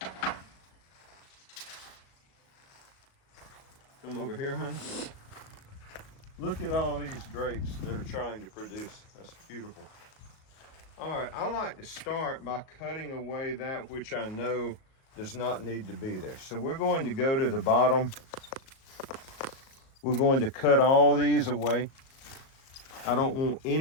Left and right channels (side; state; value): right; late; 37 ms